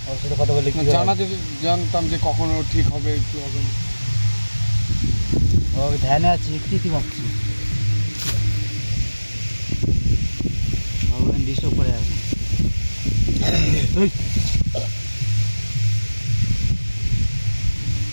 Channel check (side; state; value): both; inverted; correlation -1.00